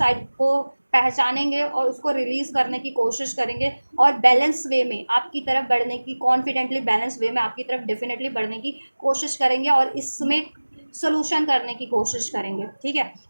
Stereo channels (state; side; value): inverted; both; correlation -1.00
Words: को पहचानेंगे और उसको रिलीज करने की कोशिश करेंगे और बैलेंस वे में आपकी तरफ बढ़ने की, कॉन्फिडेंटली बैलेंस वे में आपकी तरफ डेफिनेटली बढ़ने की कोशिश करेंगे और इसमें सोल्यूशन करने की कोशिश करेंगे, ठीक है,